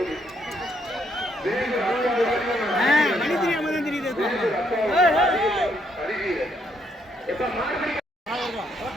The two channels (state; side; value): normal; both; correlation 0.73